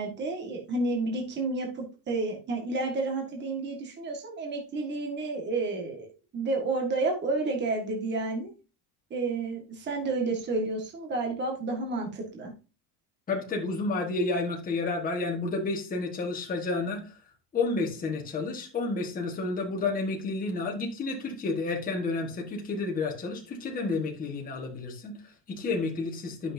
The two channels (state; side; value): normal; both; correlation 0.26